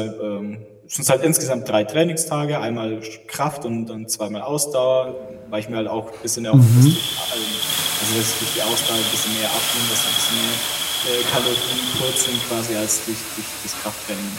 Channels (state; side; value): identical; both; correlation 1.00